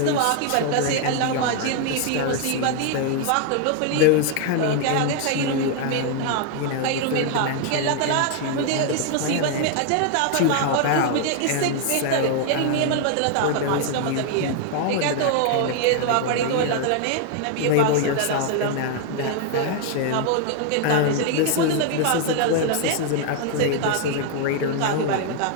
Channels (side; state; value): both; different; correlation 0.00